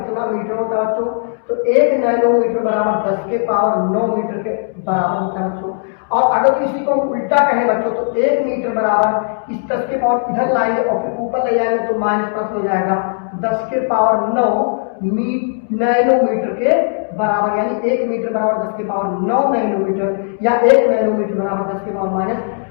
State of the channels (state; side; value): silent; right; 67 dB below the other